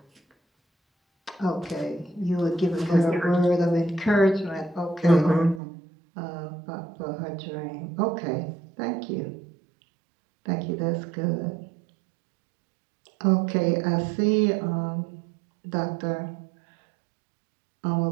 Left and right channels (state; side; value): drops out; left; at 5.6 s